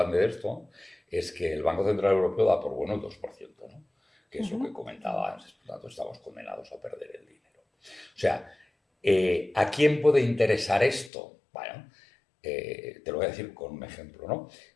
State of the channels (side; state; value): right; drops out; at 11.1 s